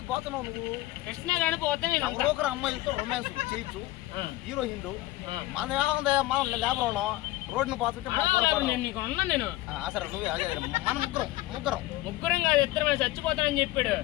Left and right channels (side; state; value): right; quieter; 17.3 dB